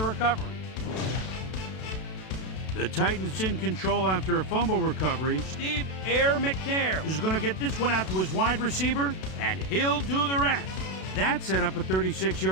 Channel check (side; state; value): right; late; 32 ms